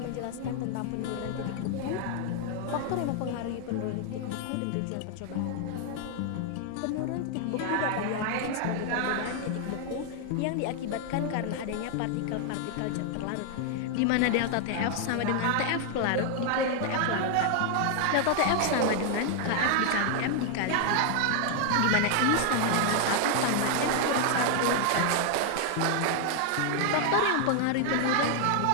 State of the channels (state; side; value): different; both; correlation 0.00